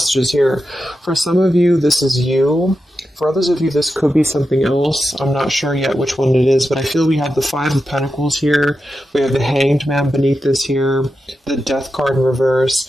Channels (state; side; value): normal; both; correlation 0.89